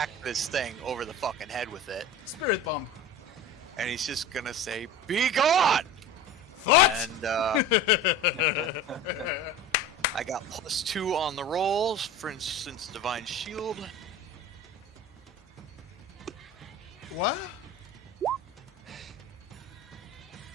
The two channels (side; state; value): both; normal; correlation 0.34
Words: this thing over the fucking head with it. Spirit bomb. And he's just gonna say, "Be gone!" What? And I got +2 on the rolls. For instance, Divine Shield. What?